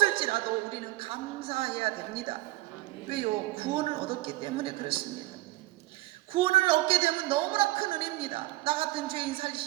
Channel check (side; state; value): left; quieter; 18.5 dB